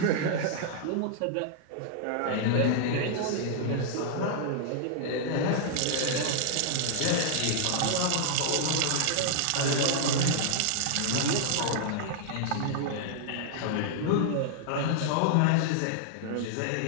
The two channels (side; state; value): both; different; correlation -0.01